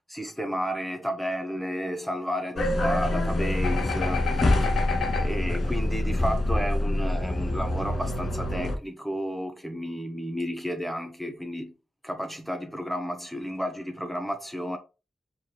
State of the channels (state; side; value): normal; both; correlation 0.90